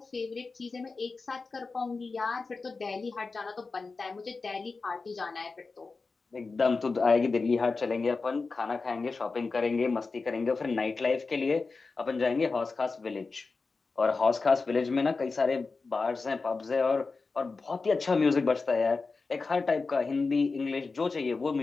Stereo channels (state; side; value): quieter; right; 4.1 dB